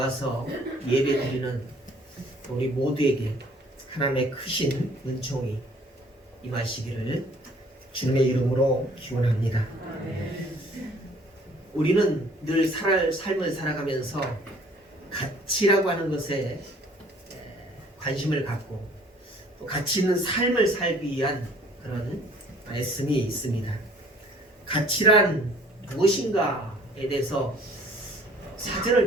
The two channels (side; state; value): both; normal; correlation 0.55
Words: 예배 드리는 우리 모두에게 하나님의 크신 은총이 임하시기를 주님의 이름으로 기원합니다. 우리는 늘 삶을 살아가면서 가치라고 하는 것에 관심을 갖고 또 가치 있는 삶을 살기 위한 그런 말씀이 있습니다. 가치란 무엇인가에 대해서 사전을